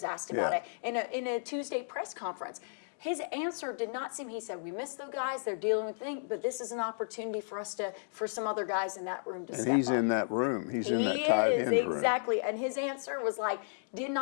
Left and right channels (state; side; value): silent; right; digital silence